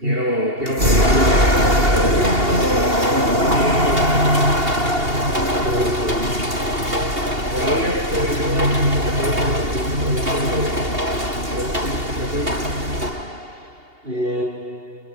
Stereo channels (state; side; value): late; left; 2.8 ms